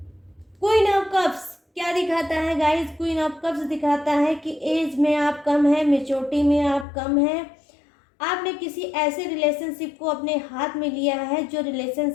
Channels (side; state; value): right; drops out; at 6.9 s